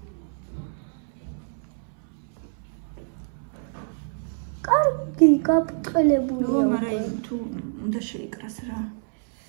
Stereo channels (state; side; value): silent; left; 61 dB below the other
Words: კარგი, გაბწყელებულია. მაგრამ თუ უნდა შეიკრას რა.